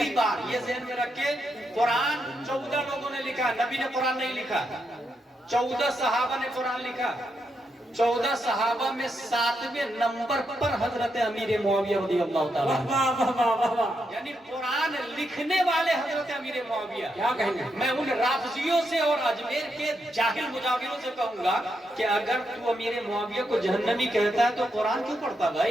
بار یہ ذہن میں رکھ کے قرآن 14 لوگوں نے لکھا، نبی نے قرآن نہیں لکھا، 14 صحابہ نے قرآن لکھا، 14 صحابہ میں 7ویں نمبر پر حضرت امیر معاویہ رضی اللہ تعالیٰ، یعنی قرآن لکھنے والے حضرت امیر معاویہ۔ کیا کہیں گے؟ میں ان رافضیوں سے اور اجمیر کے جاہل مجاوروں سے کہوں گا کہ اگر تو امیر معاویہ کو جہنمی کہتا ہے تو قرآن کیوں پڑھتا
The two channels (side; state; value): both; normal; correlation 0.82